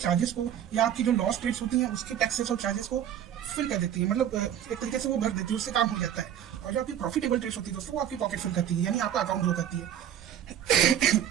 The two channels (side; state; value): left; quieter; 10.1 dB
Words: को, या आपकी जो लॉस ट्रेड्स होती हैं उसके टैक्सेस और चार्जेस को फिल कर देती है, मतलब एक तरीके से वो भर देती है, उससे काम हो जाता है। और जो आपकी प्रॉफिटेबल ट्रेड्स होती है दोस्तों वो आपकी पॉकेट फिल करती है, यानी आपका अकाउंट ग्रो करती है।